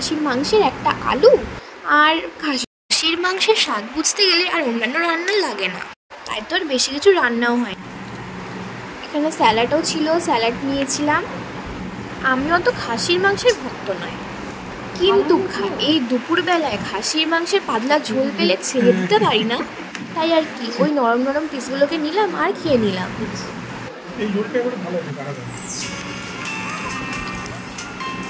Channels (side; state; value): both; identical; correlation 1.00